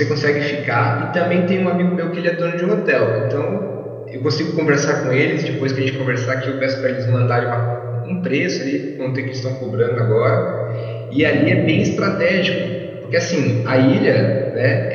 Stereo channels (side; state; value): both; identical; correlation 1.00